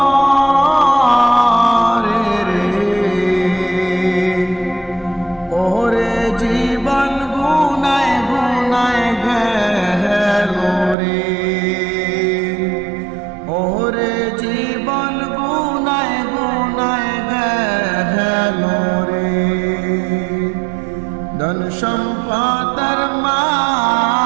রে ওরে জীবন গুনায় গুনায় গেল রে ওরে জীবন গুনায় গুনায় গেল রে ধন সম্পদের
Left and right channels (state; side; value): drops out; left; at 11.0 s